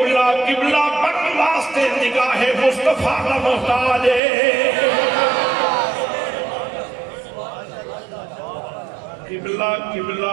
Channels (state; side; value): drops out; left; at 4.2 s